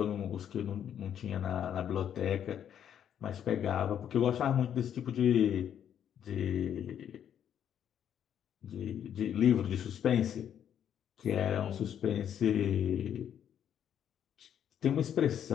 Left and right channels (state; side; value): quieter; right; 9.4 dB